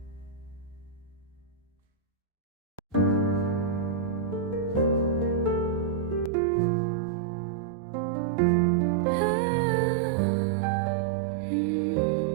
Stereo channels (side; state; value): left; drops out; at 6.3 s